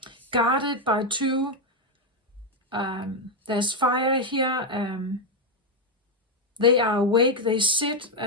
guarded by two. There's fire here. They are awake. They sit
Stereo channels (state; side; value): normal; both; correlation 0.03